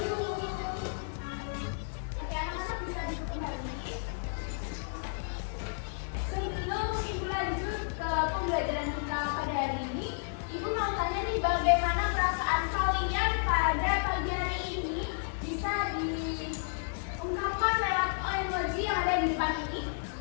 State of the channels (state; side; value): silent; right; 56 dB below the other